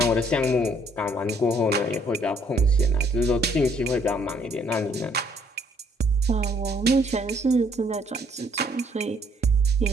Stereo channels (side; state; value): both; normal; correlation 0.65